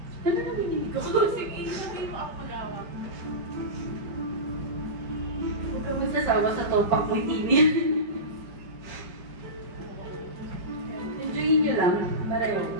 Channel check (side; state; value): left; late; 5.0 ms